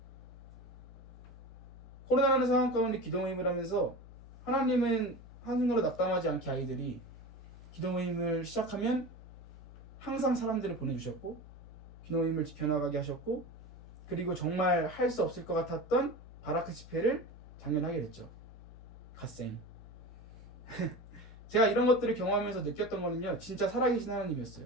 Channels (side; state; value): both; normal; correlation 0.30